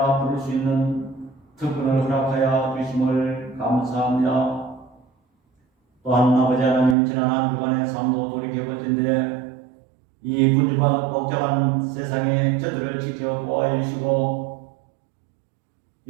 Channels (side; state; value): left; drops out; at 7.0 s